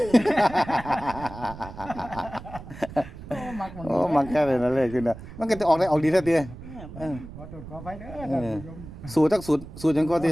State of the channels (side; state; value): right; noise; rumble, 14 dB below the sound